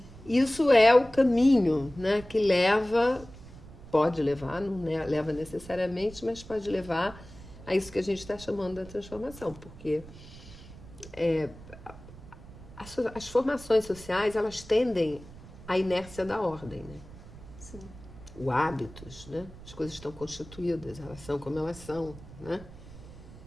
Isso é o caminho, né, que pode levar, não leva necessariamente, mas pode levar a isso que a gente está chamando da transformação, porque as formações sociais, elas tendem à inércia da ordem, né? Sim. O hábitos, né? As coisas estão constituídas, elas são como elas são, né?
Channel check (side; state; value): right; noise; rumble, 17 dB below the sound